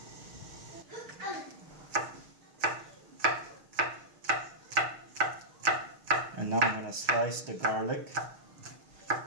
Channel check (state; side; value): late; left; 6.4 ms